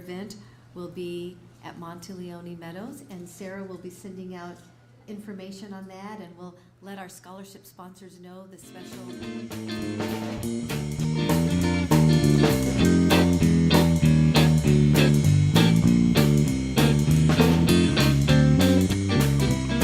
will be at Monteleone Meadows, and Sarah will be sending out information on that, and we'll let our scholarship sponsors know the special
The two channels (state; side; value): identical; both; correlation 1.00